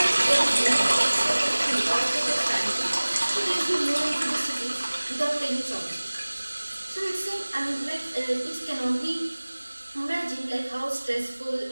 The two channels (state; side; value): inverted; both; correlation -1.00